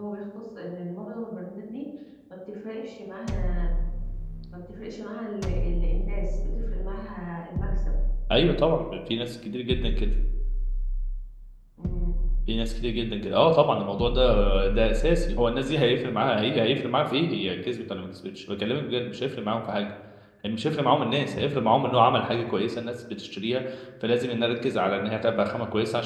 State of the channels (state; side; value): identical; both; correlation 1.00